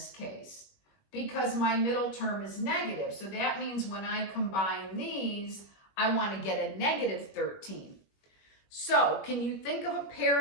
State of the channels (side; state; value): right; late; 21 ms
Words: case? Because my middle term is negative. So that means when I combine these, I want to get a negative 13. So can you think of a